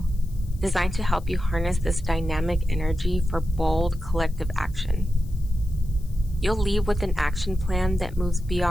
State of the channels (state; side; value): noise; left; hiss, 27 dB below the sound